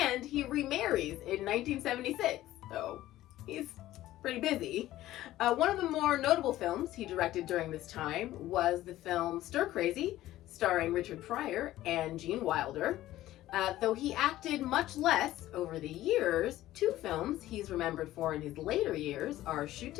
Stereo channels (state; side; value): quieter; right; 14.9 dB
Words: he remarries in 1976, so he's pretty busy. One of the more notable films he directed during this time was the film Stir Crazy, starring Richard Pryor and Gene Wilder. Though he acted much less over the years, 2 films he's remembered for in his later years are Shoot